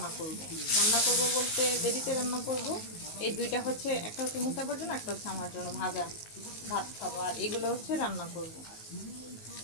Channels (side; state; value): right; late; 19 ms